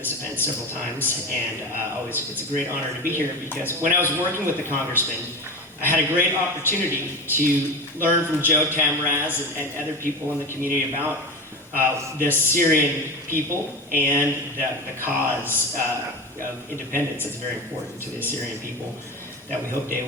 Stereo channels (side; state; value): both; normal; correlation 0.25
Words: event several times, and it's a great honor to be here because when I was working with the congressman, I had a great opportunity to learn from Joe Tamraz and other people in the community about the Assyrian people and the cause of independence that's very important to the Assyrian people that we hope they